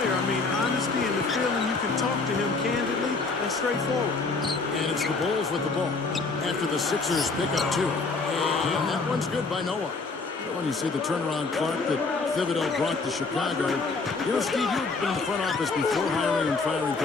I mean, honesty and the feeling you can talk to him candidly and straightforward. And it's the Bulls with the ball after the Sixers pick up two. And that one's good by Noah. When you see the turnaround Clark that Thibodeau brought to Chicago, you know, Steve, you've been in the front office before hiring and firing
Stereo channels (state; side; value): quieter; right; 4.0 dB